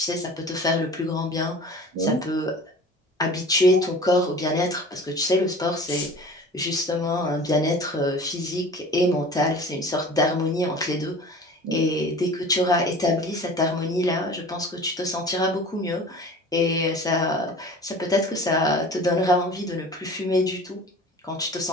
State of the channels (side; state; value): both; normal; correlation 0.41